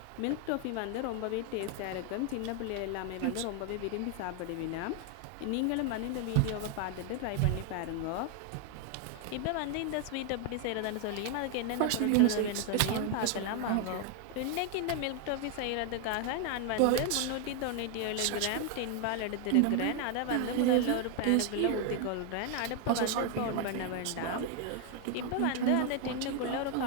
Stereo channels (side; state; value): both; different; correlation 0.01